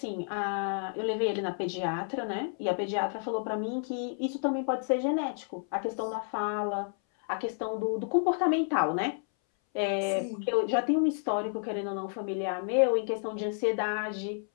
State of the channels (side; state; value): right; silent; 57 dB below the other